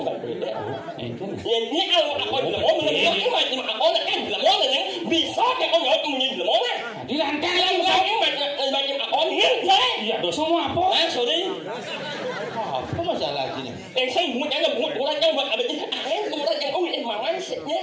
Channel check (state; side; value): identical; both; correlation 1.00